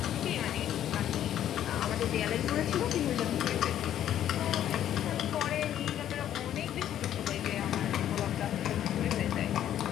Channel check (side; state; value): right; quieter; 11.1 dB